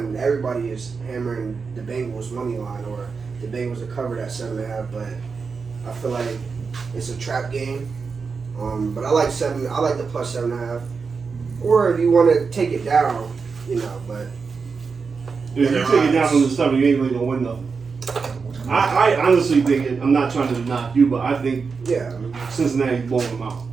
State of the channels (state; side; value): quieter; left; 5.1 dB